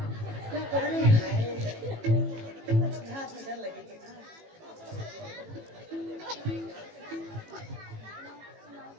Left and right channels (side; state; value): left; late; 18 ms